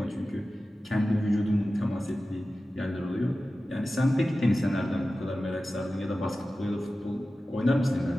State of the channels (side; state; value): both; normal; correlation 0.95